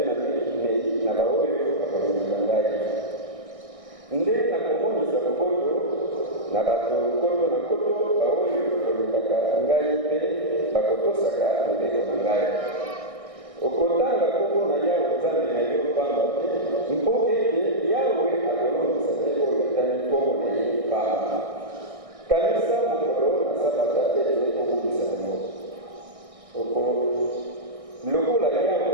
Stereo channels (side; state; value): left; late; 1.6 ms